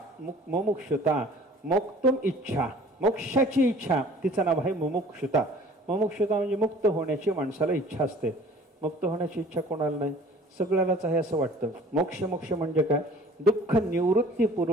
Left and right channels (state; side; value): normal; both; correlation 0.50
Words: मुमुक्षुता, मोक्तुम इच्छा, मोक्षाची इच्छा, तिचं नाव आहे मुमुक्षुता. मुमुक्षुता म्हणजे मुक्त होण्याची माणसाला इच्छा असते. मुक्त होण्याची इच्छा कोणाला नाही. सगळ्यालाच आहे असं वाटतं. मोक्ष मोक्ष म्हणजे काय? दुःख